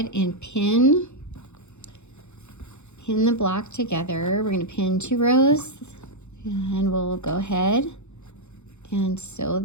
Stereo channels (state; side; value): late; right; 0.82 ms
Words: and pin the block together. We're going to pin 2 rows, and we'll go ahead and sew